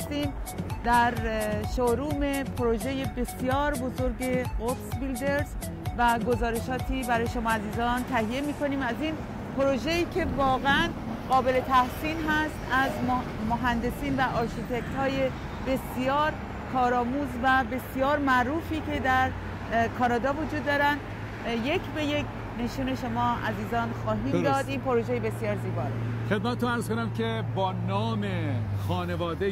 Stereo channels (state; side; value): identical; both; correlation 1.00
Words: در شوروم پروژه بسیار بزرگ قدس بیلدرز و گزارشاتی برای شما عزیزان تهیه میکنیم از این پروژه‌ای که واقعا قابل تحسین هست از مهندسین و آرشیتکت های بسیار کارآموز و بسیار معروفی که در کانادا وجود دارن. یک به یک نشون شما عزیزان خواهیم داد. این پروژه بسیار زیبا رو خدمتتون عرض کنم که با نام